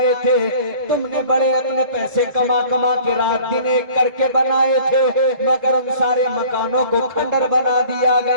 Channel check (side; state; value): left; late; 1.9 ms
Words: थे, तुमने बड़े अपने पैसे कमा कमा के रात दिन एक करके बनाए थे, मगर उन सारे मकानों को खंडर बना दिया